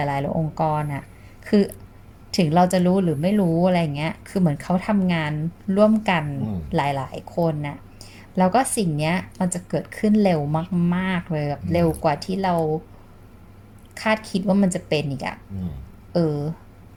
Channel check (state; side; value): identical; both; correlation 1.00